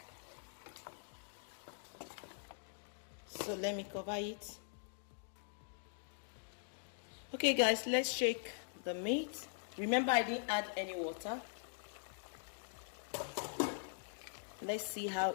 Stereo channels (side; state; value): right; silent; digital silence